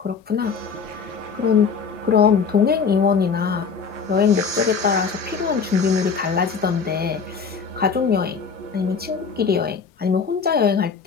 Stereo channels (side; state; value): right; quieter; 5.7 dB